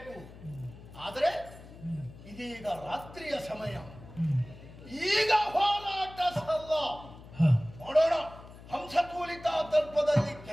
ಆದರೆ ಇದೀಗ ರಾತ್ರಿಯ ಸಮಯ, ಈಗ ಹೋರಾಟ ಸಲ್ಲ. ನೋಡೋಣ, ಹಂಸತೂಲಿತ ತಲ್ಪದಲ್ಲಿ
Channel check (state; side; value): noise; left; hum, 18 dB below the sound